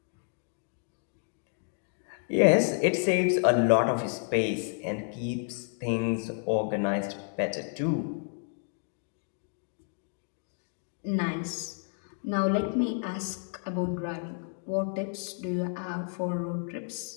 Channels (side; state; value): right; silent; 57 dB below the other